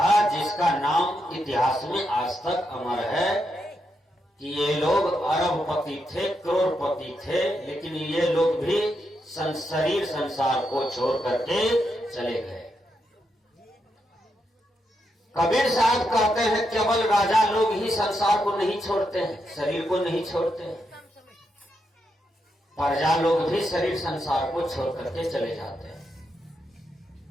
जिसका नाम इतिहास में आज तक अमर है कि ये लोग अरबपति थे, करोड़पति थे, लेकिन ये लोग भी शरीर संसार को छोड़ करके चले गए। कबीर साहब कहते हैं केवल राजा लोग ही संसार को नहीं छोड़ते हैं, शरीर को नहीं छोड़ते हैं। प्रजा लोग भी शरीर संसार को छोड़ करके चले जाते हैं।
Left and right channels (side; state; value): both; normal; correlation 0.83